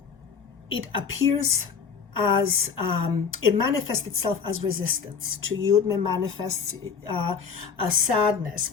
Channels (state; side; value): quieter; right; 6.1 dB